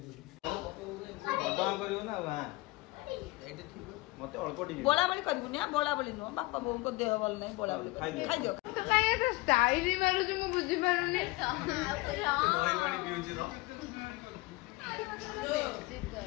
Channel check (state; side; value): quieter; right; 22.0 dB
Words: करियो ना वहां मते अल्प टिके बोला बोली करबुनी आ बोला बोली नो बापा बोम को देह बोल नहीं बोला बोली खाइ दियो तो काहे तो स्टाइल ही मारू जो मु बुझी पारुनी ओइ पानी पिउछि तो